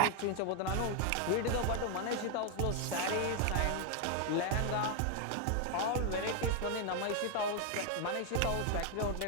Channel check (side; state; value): both; different; correlation 0.01